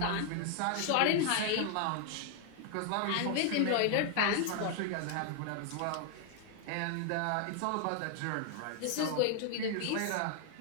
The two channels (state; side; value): different; both; correlation 0.00